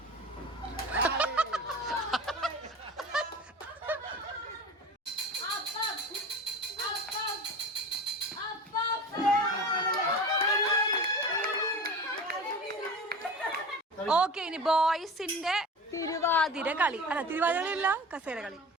ഓക്കെ, ഇനി ബോയ്സിന്റെ തിരുവാതിര കളി. അല്ല, തിരുവാതിര കളിയല്ല, കസേര കളി.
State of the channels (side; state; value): both; normal; correlation 0.34